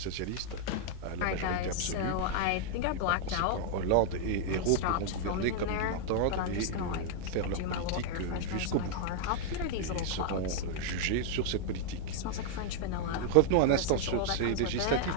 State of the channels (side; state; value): both; different; correlation 0.00